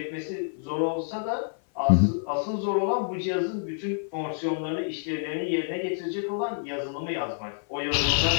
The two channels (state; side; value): silent; right; 56 dB below the other